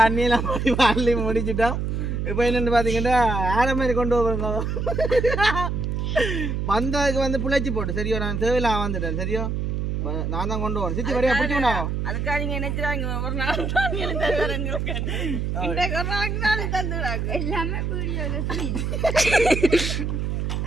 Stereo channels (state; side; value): noise; right; hum, 1 dB below the sound